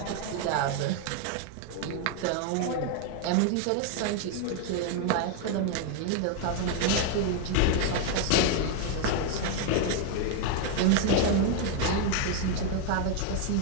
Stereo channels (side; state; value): both; different; correlation 0.00